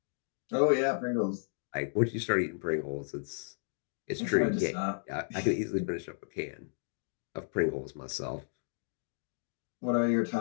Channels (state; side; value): silent; right; digital silence